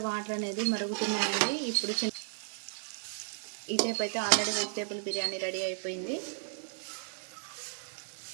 వాటర్ అనేది మరుగుతున్నాయండి. ఇప్పుడు ఈ టైప్ అయితే ఆల్రెడీ వెజిటేబుల్ బిర్యానీ రెడీ అయిపోయింది.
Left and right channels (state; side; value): silent; left; 55 dB below the other